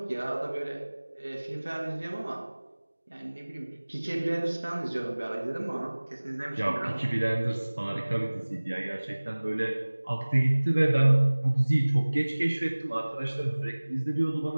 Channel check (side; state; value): both; inverted; correlation -1.00